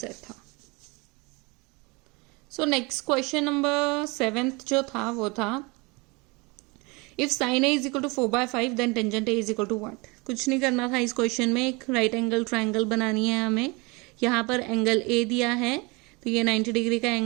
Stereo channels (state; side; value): quieter; left; 27.2 dB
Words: था। So next question number 7th जो था वो था if sine A is equal to 4/5 then tangent A is equal to what. कुछ नहीं करना था इस क्वेश्चन में, एक राइट एंगल ट्रायंगल बनानी है हमें। यहाँ पर एंगल ए दिया है, तो ये 90 डिग्री का